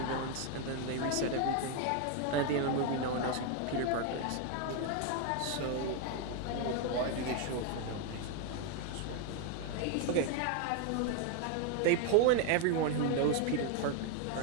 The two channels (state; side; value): different; both; correlation 0.01